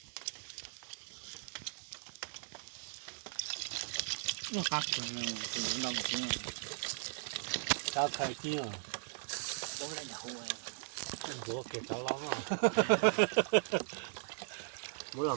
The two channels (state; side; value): silent; left; digital silence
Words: nó cắt rồi từ lòng chứ cao khai kia bố lại đậu rồi bữa kẹt cho lắm à bố là